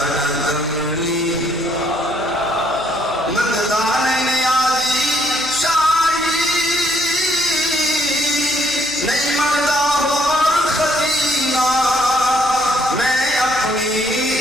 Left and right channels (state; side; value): noise; right; hum, 22 dB below the sound